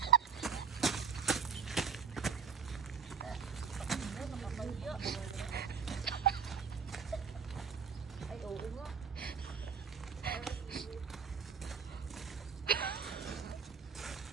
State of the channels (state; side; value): quieter; left; 6.4 dB